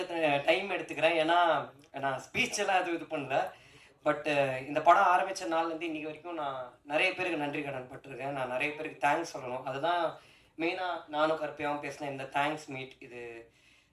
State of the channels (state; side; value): identical; both; correlation 1.00